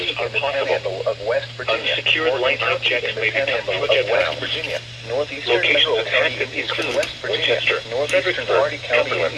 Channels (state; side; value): identical; both; correlation 1.00